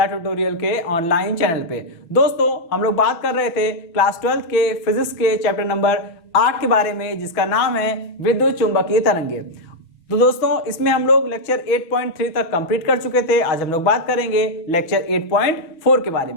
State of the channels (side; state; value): right; late; 6.2 ms